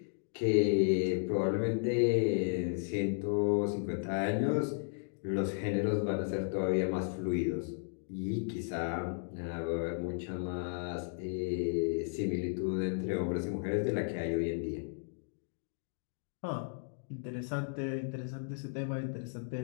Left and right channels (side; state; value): right; silent; digital silence